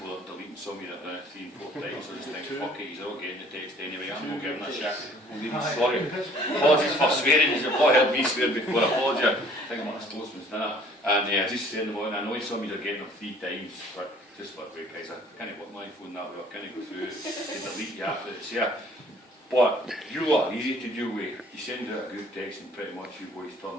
deleting some of you that run it 3 and 4 times. So I just think, fuck it, he's all getting the text anyway. I'm not giving a shit. I'm really sorry. Apologies for swearing. You've not heard me swear before. Apologies. I think I'm at a sportsman's dinner. And I just saying them all. And I know some of you are getting them 3 times. But just for the way, guys, I can't work my phone that way. I can't go through and delete you after it's here. But you lot are easy to deal with. You send out a group text and pretty much you boys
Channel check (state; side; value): normal; both; correlation 0.55